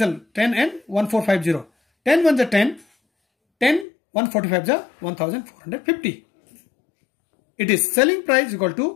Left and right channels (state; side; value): drops out; right; at 3.9 s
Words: 10 and 1450. 10 ones are 10, 10 145 are 1450. It is selling price equal